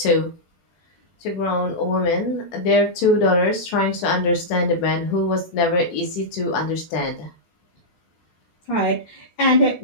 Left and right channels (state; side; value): late; right; 17 ms